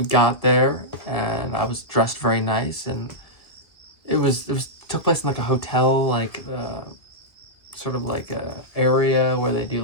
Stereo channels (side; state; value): right; late; 1.9 ms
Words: got there, and I was dressed very nice, and it took place in like a hotel, like sort of like a area where they do